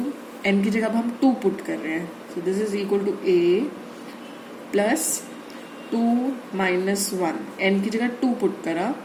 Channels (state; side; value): identical; both; correlation 1.00